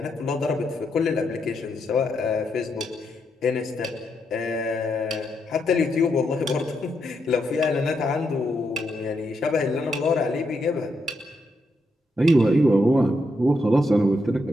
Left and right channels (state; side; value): normal; both; correlation 0.81